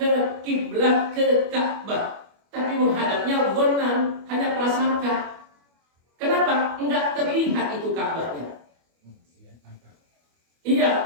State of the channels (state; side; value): late; left; 25 ms